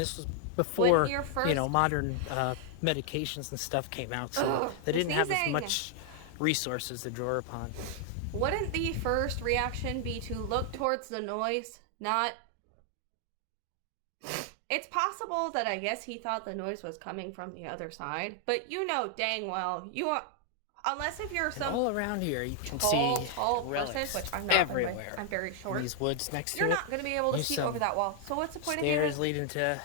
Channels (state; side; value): different; both; correlation 0.00